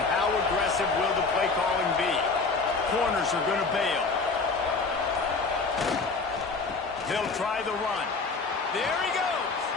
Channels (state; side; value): quieter; right; 4.1 dB